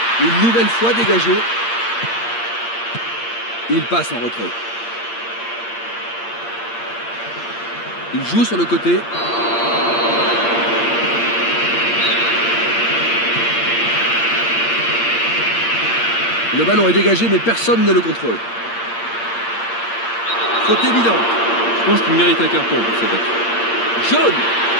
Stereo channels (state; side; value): late; right; 8.6 ms